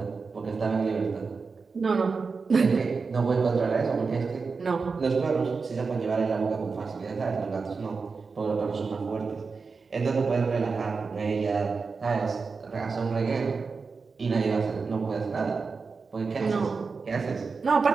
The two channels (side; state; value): left; quieter; 4.7 dB